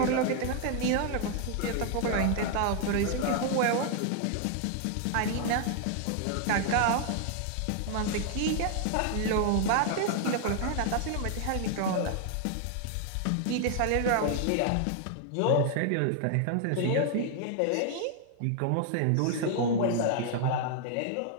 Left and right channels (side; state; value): both; different; correlation 0.00